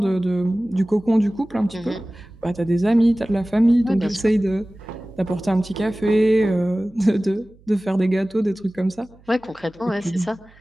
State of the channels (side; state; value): right; noise; hum, 27 dB below the sound